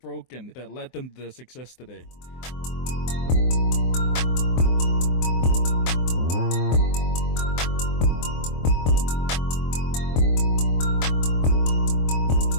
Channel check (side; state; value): right; late; 23 ms